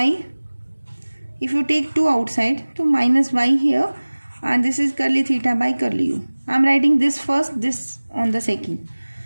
If you take 2 outside, so minus y here, and this is curly theta by curly u. I am writing this first, this on the second.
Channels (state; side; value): inverted; both; correlation -1.00